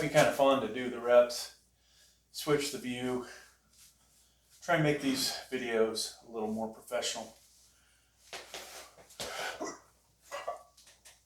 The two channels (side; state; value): both; identical; correlation 1.00